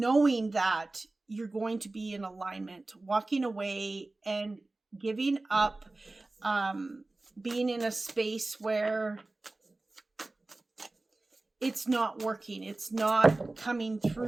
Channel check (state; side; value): quieter; left; 3.0 dB